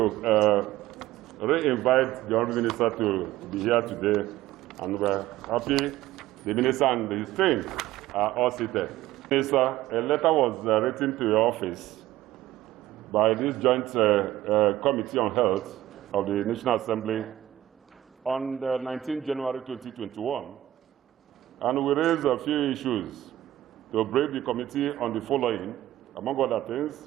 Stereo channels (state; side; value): quieter; left; 14.3 dB